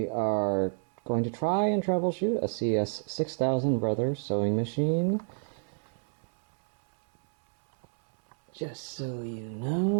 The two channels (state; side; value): silent; left; 58 dB below the other